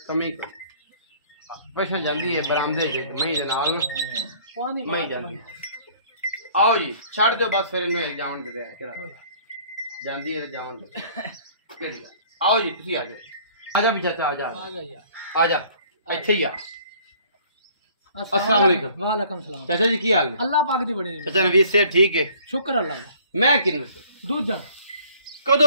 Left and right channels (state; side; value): inverted; both; correlation -0.55